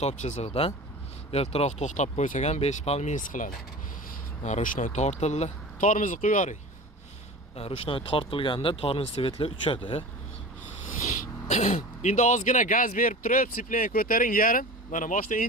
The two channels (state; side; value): normal; both; correlation 0.34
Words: chizig'idan. Ertaroq to'xtab qo'ysak ham 5 pal minus qiladi. Rushnoy tortildi. Tormozni qo'yaring. Rushnoy tortilganda tormoz svetlar uchadi. Endi ozgina gaz berib turib, sipleni ko'taring yarim. Mana mashina